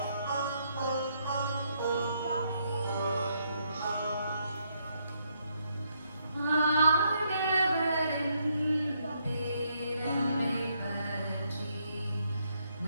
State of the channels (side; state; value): both; inverted; correlation -0.74